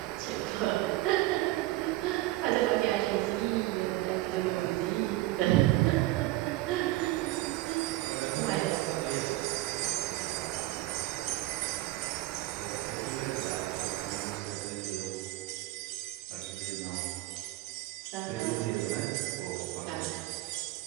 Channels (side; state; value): left; quieter; 17.9 dB